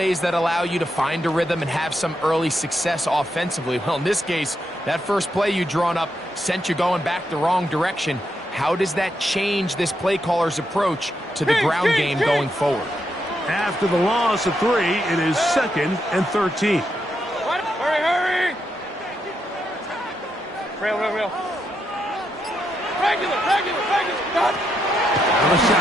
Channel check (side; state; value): both; normal; correlation 0.81